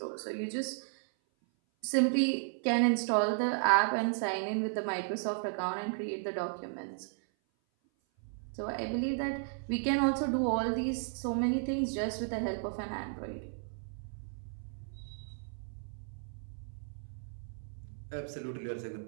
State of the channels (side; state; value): left; silent; 55 dB below the other